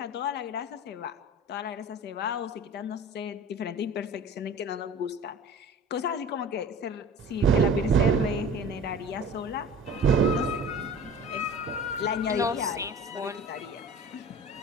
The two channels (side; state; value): both; normal; correlation 0.40